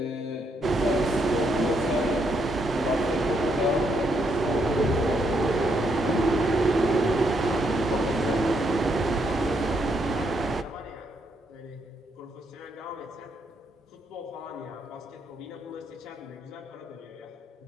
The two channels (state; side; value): normal; both; correlation 0.76